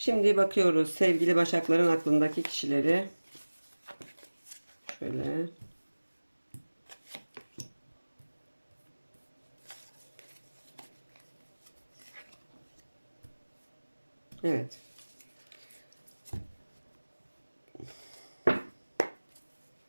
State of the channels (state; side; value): inverted; both; correlation -1.00